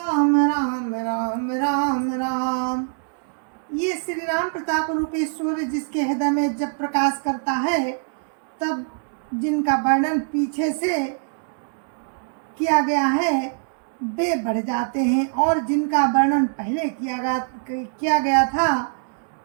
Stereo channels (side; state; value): left; silent; digital silence